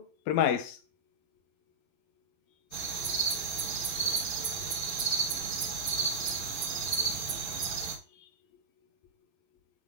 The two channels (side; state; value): right; late; 12 ms